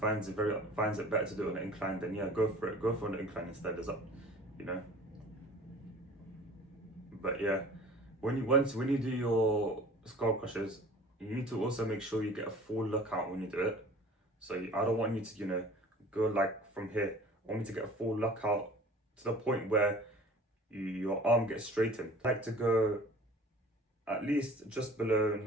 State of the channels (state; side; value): normal; both; correlation 0.45